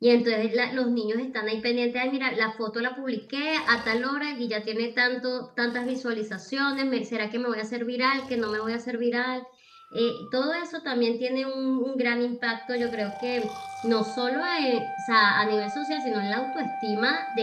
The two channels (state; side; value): identical; both; correlation 1.00